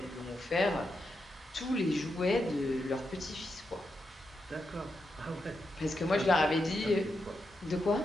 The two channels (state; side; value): normal; both; correlation 0.85